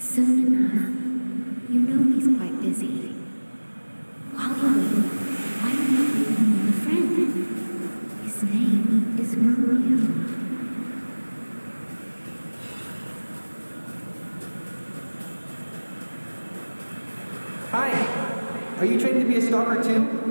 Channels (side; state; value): both; inverted; correlation -1.00